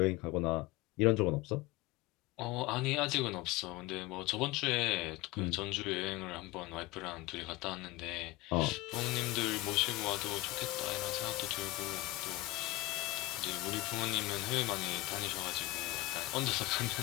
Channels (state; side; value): quieter; right; 19.4 dB